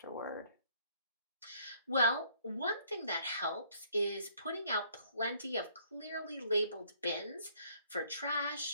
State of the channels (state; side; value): inverted; both; correlation -0.62